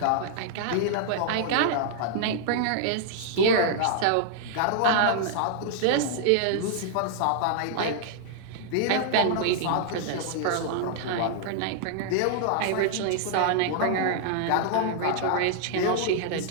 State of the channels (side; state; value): both; different; correlation -0.01